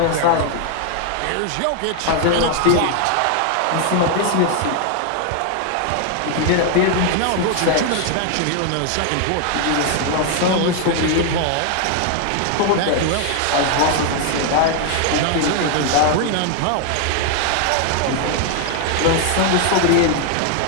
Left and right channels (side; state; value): both; different; correlation 0.00